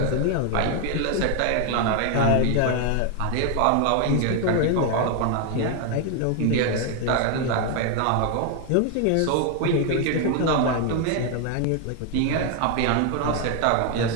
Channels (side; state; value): both; different; correlation 0.01